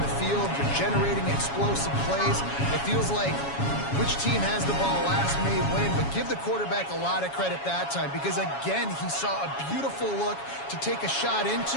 field. They're generating explosive plays. It feels like which team has the ball last may win, but give the quarterback a lot of credit that time because, again, he saw a beautiful look to take a shot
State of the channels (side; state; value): right; late; 7.2 ms